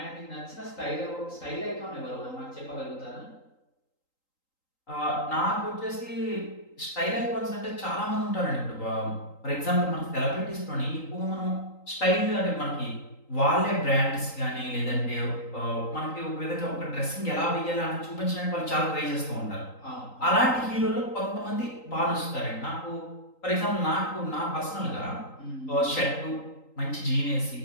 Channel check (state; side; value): late; right; 3.8 ms